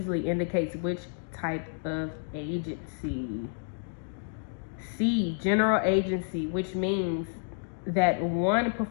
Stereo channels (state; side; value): silent; right; digital silence